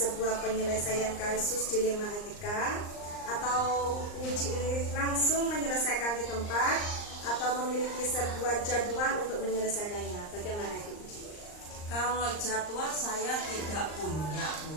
penyelesaian kasus dilema etika, atau Uji langsung menyelesaikan di tempat atau memiliki sebuah jadwal untuk menyelesaikannya? Bagaimana itu Uji? Kalau jadwal saya tidak punya,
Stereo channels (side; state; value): right; late; 39 ms